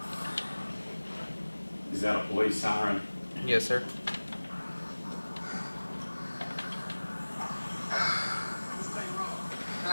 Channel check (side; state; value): both; inverted; correlation -1.00